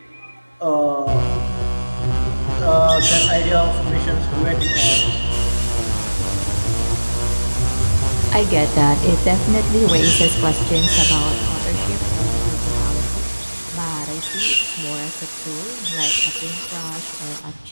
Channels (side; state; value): both; inverted; correlation -1.00